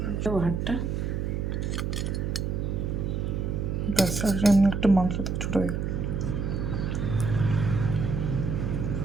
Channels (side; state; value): right; noise; hum, 1 dB below the sound